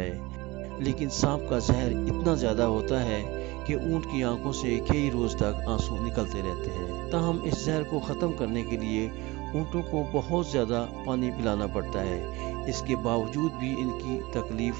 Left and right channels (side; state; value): left; quieter; 21.9 dB